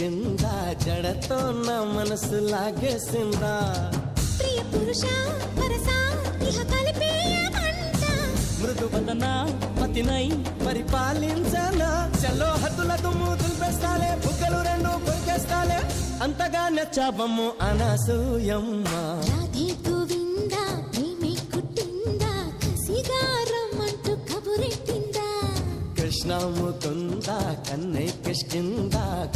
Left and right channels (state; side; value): identical; both; correlation 1.00